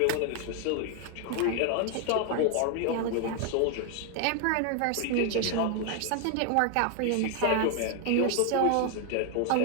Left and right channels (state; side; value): different; both; correlation 0.01